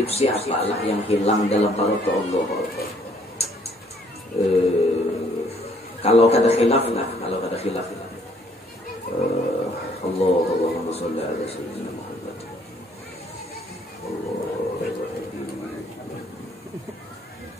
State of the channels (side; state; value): both; normal; correlation 0.63